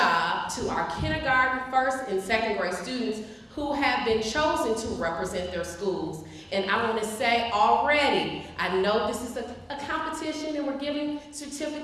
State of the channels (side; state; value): both; identical; correlation 1.00